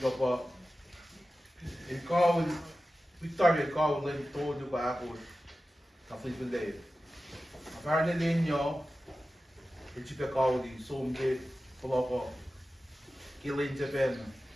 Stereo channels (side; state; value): both; normal; correlation 0.94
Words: pa. Il call Victoria call lên tôi được bà của cà phê bên đây. Và nên lên nhau, thì chỉ phải call đi xôm cái bao có cái lên cho bên.